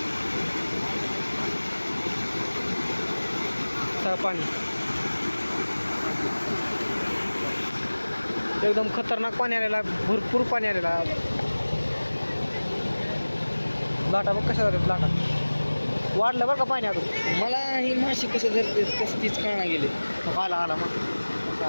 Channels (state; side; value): inverted; both; correlation -1.00